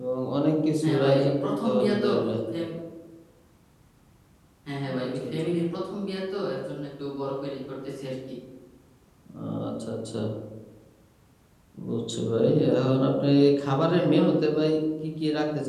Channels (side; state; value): both; identical; correlation 1.00